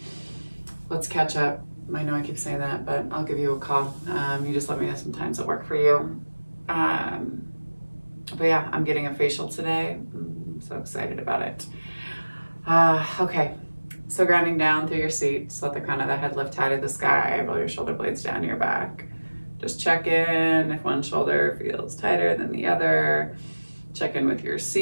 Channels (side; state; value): both; inverted; correlation -1.00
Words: Let's catch up. I know I keep saying that, but I'll give you a call. You just let me know some times that work for you. But yeah, I'm getting a facial today. I'm so excited about it. Okay, so grounding down through your seat. Just let the crown of the head lift high to the sky. Roll your shoulder blades down your back. Just check in if one shoulder feels tighter than the other. Check in with your